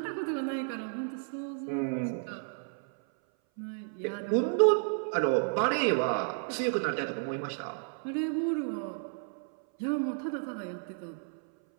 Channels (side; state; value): left; silent; 56 dB below the other